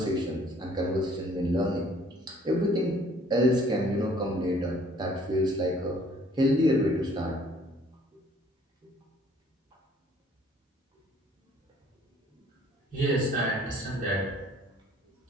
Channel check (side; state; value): both; normal; correlation 0.58